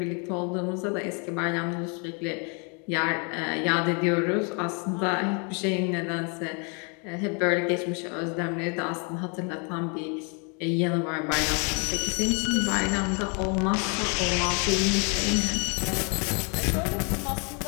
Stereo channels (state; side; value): quieter; right; 35.7 dB